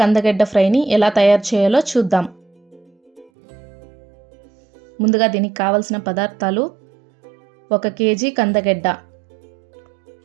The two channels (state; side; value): drops out; left; at 3.3 s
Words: ఫ్రైని ఎలా తయారు చేయాలో చూద్దాం. ముందుగా దీనికి కావలసిన పదార్థాలు: 1 కేజీ